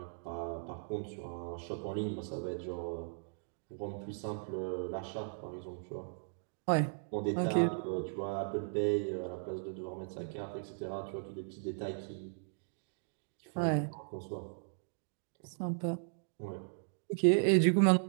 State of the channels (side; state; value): left; silent; digital silence